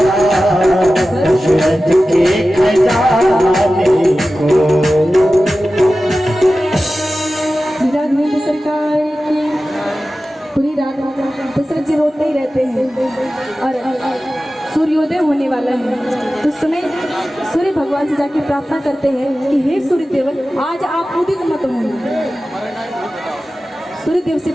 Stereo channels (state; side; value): normal; both; correlation 0.95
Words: दशरथ के खजाने को। सरकार की पूरी रात दशरथ जी रोते ही रहते हैं और सूर्योदय होने वाला है तो उस समय सूर्य भगवान से जाके प्रार्थना करते हैं कि हे सूर्यदेव आज आप उदित मत होना। सूर्यदेव से